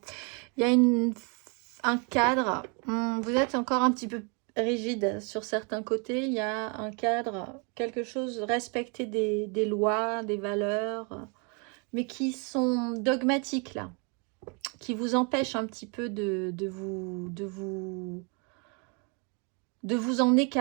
il y a un cadre. Vous êtes encore un petit peu rigide sur certains côtés. Il y a un cadre, quelque chose, respecter des lois, des valeurs, mais qui sont dogmatiques là, qui vous empêchent un petit peu de vous en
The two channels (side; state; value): left; quieter; 34.8 dB